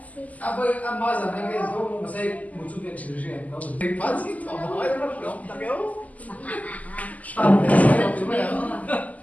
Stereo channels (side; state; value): right; late; 0.076 ms